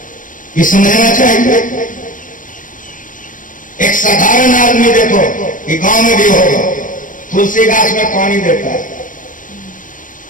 ये समझना चाहिए। एक साधारण आदमी देखो कि गांव में भी होगा, तुलसी गाछ में पानी देता है,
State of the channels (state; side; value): late; right; 0.38 ms